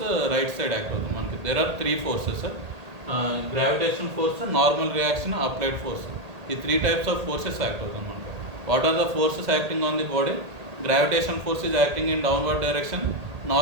right side act అవుతుంది మనకి. There are 3 forces, gravitation force, normal reaction, applied force. ఈ 3 types of forces act అవుతుంది మనకి. What are the forces acting on the body? Gravitation force is acting in downward direction,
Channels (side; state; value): left; late; 1.8 ms